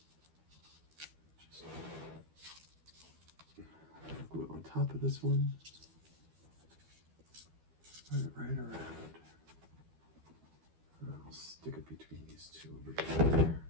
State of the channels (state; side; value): late; left; 12 ms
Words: Just glue on top of this one. Put it right around. I'll stick it between these two over